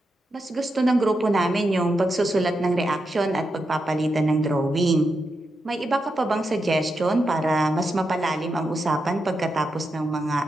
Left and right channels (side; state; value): both; normal; correlation 0.86